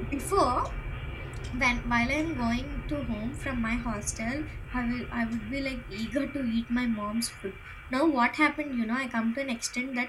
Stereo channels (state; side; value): identical; both; correlation 1.00